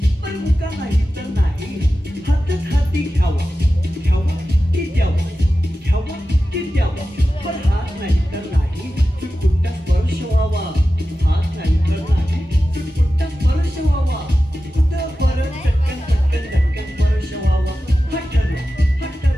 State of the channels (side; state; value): both; normal; correlation 0.94